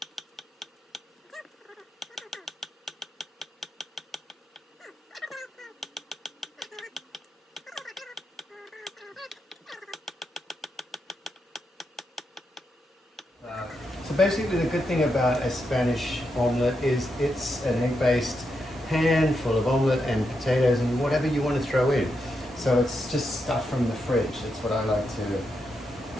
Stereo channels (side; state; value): both; normal; correlation 0.84